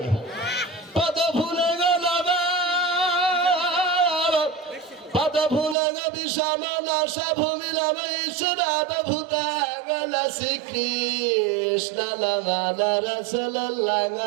পদ ভুলে গেল, পদ ভুলে গে বিষমনা সভূমিলাম ঈশ্বরাব ভূতাগণ শ্রীকৃষ্ণ নাম রাসূলুল্লাহ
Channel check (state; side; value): drops out; left; at 5.8 s